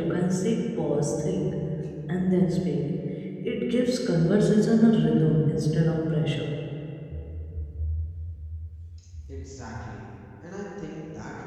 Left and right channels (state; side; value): identical; both; correlation 1.00